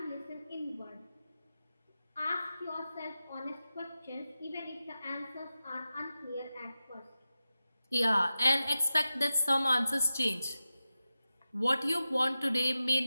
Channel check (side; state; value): both; inverted; correlation -0.93